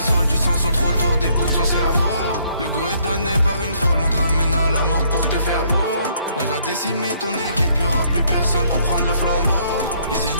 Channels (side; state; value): both; inverted; correlation -0.67